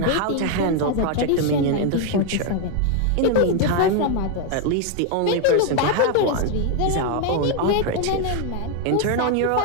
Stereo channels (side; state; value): both; different; correlation 0.01